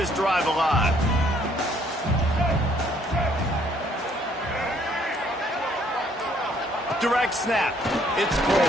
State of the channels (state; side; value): normal; both; correlation 0.64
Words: drive alive. Direct snap. It's